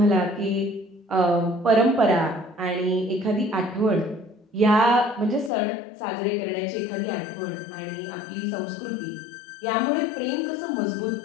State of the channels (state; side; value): drops out; right; at 5.5 s